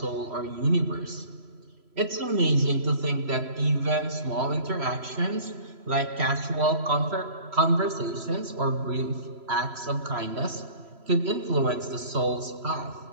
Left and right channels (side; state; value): left; late; 3.0 ms